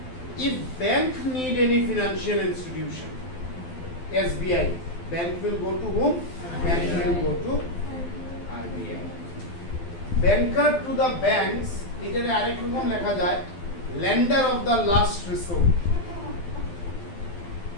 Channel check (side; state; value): right; late; 12 ms